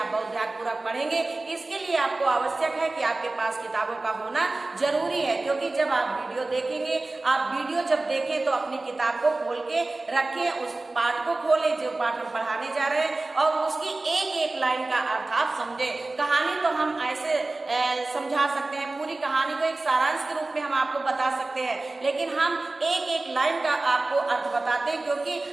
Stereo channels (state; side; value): quieter; left; 3.1 dB